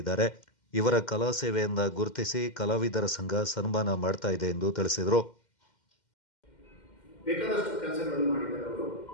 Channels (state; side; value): late; right; 2.1 ms